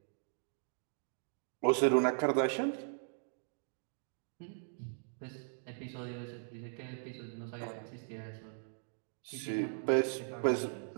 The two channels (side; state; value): left; silent; digital silence